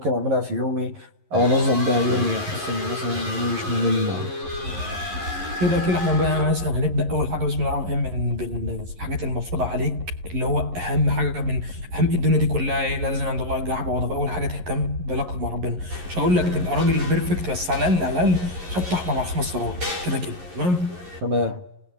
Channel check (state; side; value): late; left; 11 ms